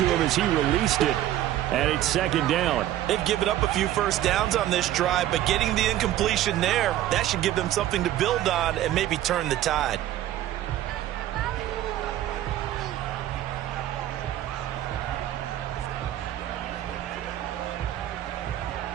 him as he released it. And it's 2nd down. They've given up a few first downs on this drive, but getting the incompletion there, that should give them something to build on and maybe turn the tide.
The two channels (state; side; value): quieter; left; 13.2 dB